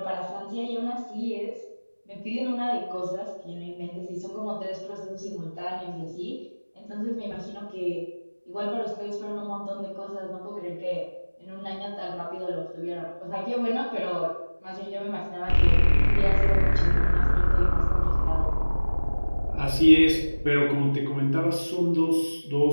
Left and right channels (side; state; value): both; inverted; correlation -1.00